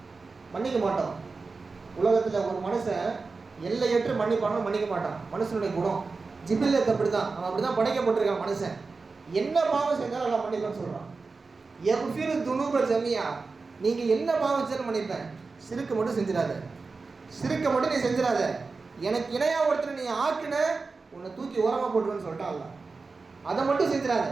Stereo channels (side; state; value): left; quieter; 4.2 dB